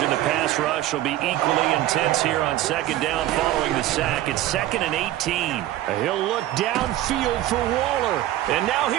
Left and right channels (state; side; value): quieter; left; 14.2 dB